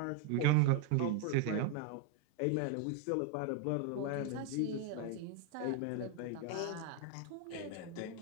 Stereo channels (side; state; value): both; different; correlation 0.01